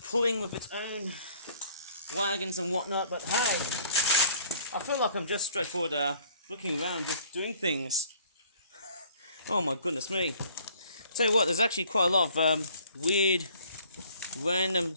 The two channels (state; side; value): inverted; both; correlation -0.57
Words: pulling with its own wagons and whatnot, but hey, I feel like I'm just straightforward looking around, just doing things. Oh my goodness me. Tell you what, there's actually quite a lot of weird, random